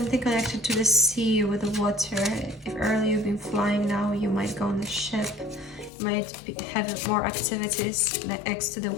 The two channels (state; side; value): drops out; right; at 5.9 s